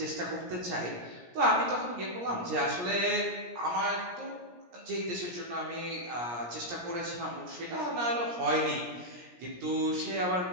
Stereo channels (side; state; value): left; late; 17 ms